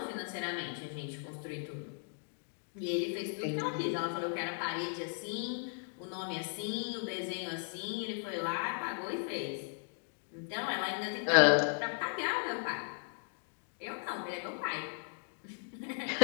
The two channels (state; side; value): silent; right; 53 dB below the other